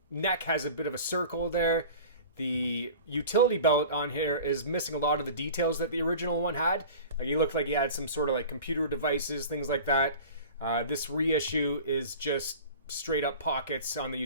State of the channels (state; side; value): inverted; both; correlation -0.39